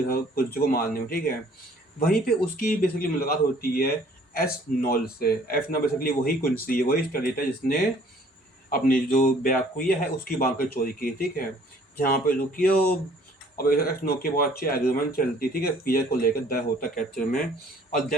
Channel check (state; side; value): normal; both; correlation 0.57